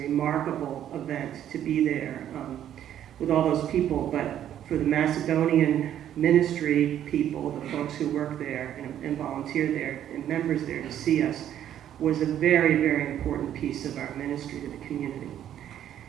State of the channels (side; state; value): left; quieter; 10.8 dB